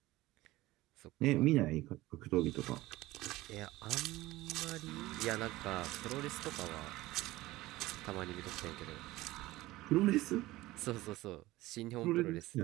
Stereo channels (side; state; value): left; quieter; 18.2 dB